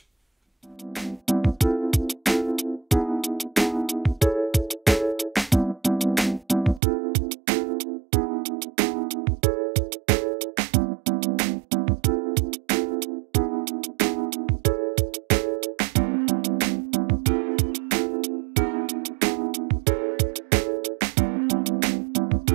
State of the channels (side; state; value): left; drops out; at 6.8 s